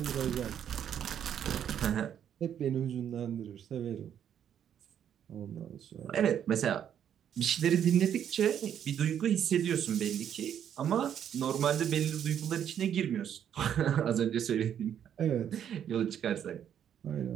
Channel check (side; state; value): left; quieter; 9.3 dB